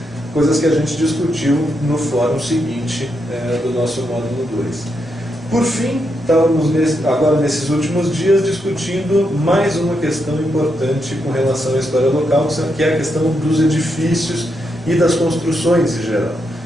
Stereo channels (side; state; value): both; normal; correlation 0.82